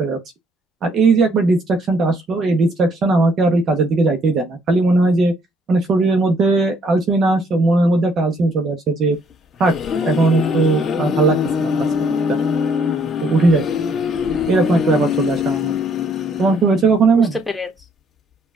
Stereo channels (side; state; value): both; normal; correlation 0.66